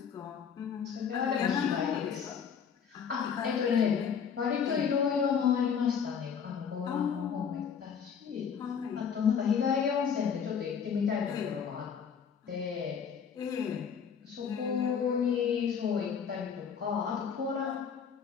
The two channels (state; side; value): quieter; right; 7.1 dB